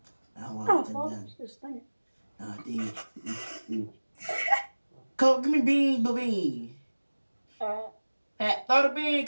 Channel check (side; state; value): both; inverted; correlation -1.00